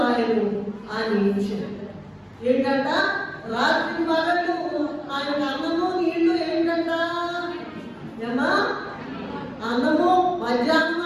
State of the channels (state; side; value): identical; both; correlation 1.00